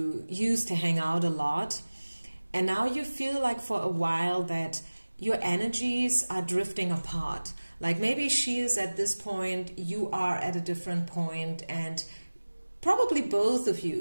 used to hang out a lot. And now you feel like for a while that your energies are drifting apart. Like maybe she is at this point, you are at a different point, and probably both of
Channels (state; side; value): inverted; both; correlation -1.00